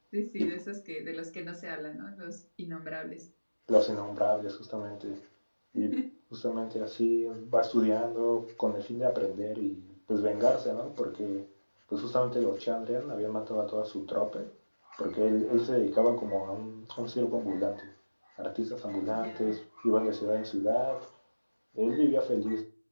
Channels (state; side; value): inverted; both; correlation -1.00